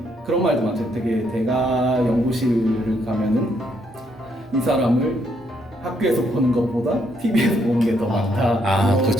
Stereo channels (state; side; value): normal; both; correlation 0.73